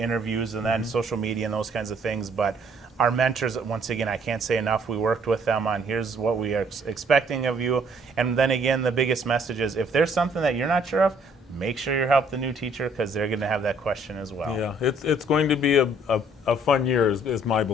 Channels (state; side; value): normal; both; correlation 0.62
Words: and then social media and those kinds of things. But our mentors, once again, I can't say enough. We worked with them on here's what we are expecting of you. And then again, the biggest message is if there's something that you're not sure of, make sure you help the new teacher, because they're going to have that question as well. Yeah, it's going to be a fun year, is my